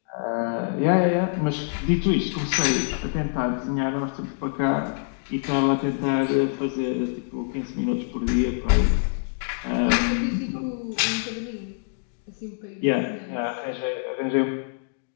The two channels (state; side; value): silent; right; digital silence